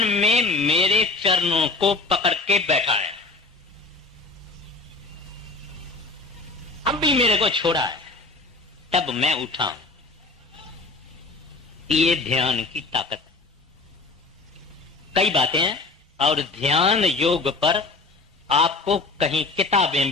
मेरे चरणों को पकड़ के बैठा है, अब भी मेरे को छोड़ा है, तब मैं उठा हूं। ये ध्यान की ताकत। कई बातें हैं और ध्यान योग पर आपको कहीं किताबें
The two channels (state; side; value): quieter; right; 3.6 dB